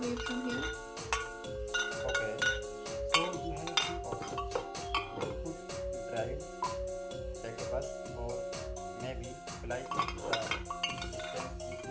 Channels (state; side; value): identical; both; correlation 1.00